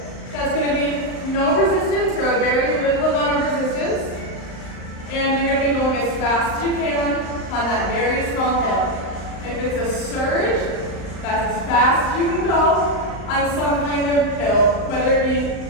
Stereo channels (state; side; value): late; right; 38 ms